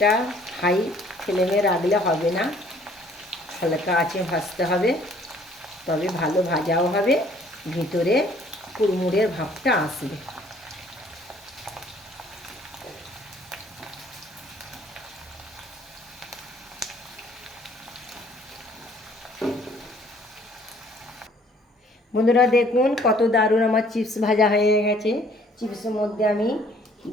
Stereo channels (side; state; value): both; normal; correlation 0.59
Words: হাই ফ্লেমে রাখলে হবে না, হালকা আঁচে ভাজতে হবে, তবে ভালো ভাজাও হবে, ভিতরে কুড়মুড়ের ভাবটা আসবে। বন্ধুরা দেখুন কত দারুণ আমার চিপস ভাজা হয়ে গেছে। চিপসের মধ্যে আমি